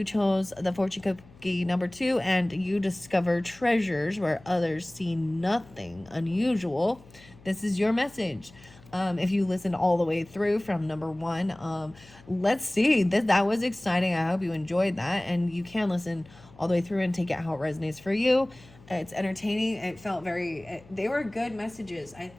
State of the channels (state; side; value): noise; left; hum, 24 dB below the sound